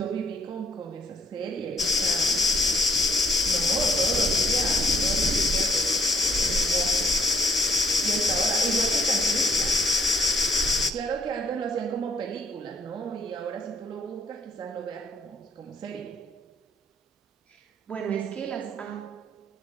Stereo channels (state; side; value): normal; both; correlation 0.65